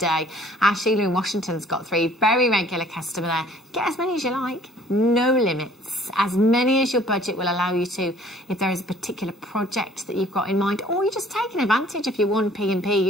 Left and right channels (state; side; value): normal; both; correlation 0.55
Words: Sheila in Washington's got 3. Very regular customer there. Get as many as you like. No limits. As many as your budget will allow you to. If there is a particular project that you've got in mind, or you're just taking advantage of your 1P&P,